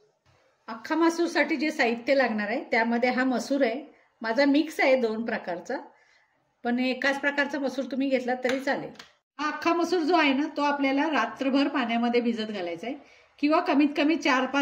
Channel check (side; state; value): both; identical; correlation 1.00